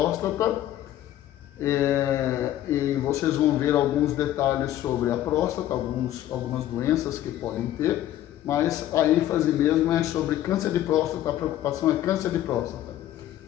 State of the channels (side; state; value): right; quieter; 12.9 dB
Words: E vocês vão ver alguns detalhes sobre a próstata, algumas doenças que podem ter, mas a ênfase mesmo é sobre câncer de próstata, a preocupação é câncer de próstata.